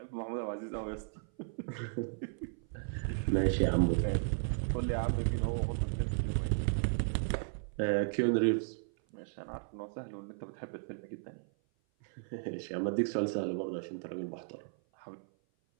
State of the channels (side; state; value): left; silent; 54 dB below the other